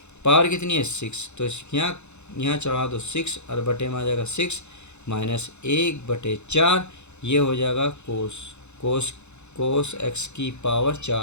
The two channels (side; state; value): right; late; 0.82 ms